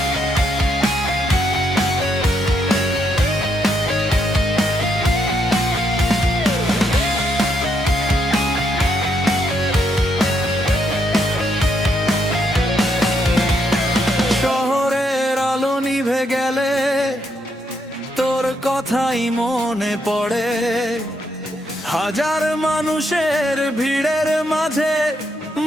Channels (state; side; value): normal; both; correlation 0.77